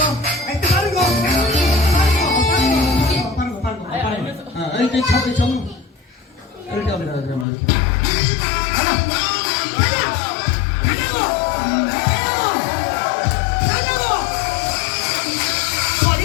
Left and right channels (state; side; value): drops out; right; at 7.5 s